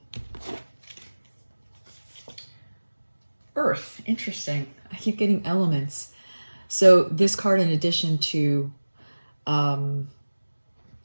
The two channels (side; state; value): both; inverted; correlation -1.00